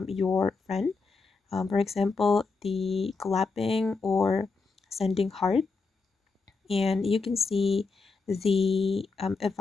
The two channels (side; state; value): right; quieter; 4.3 dB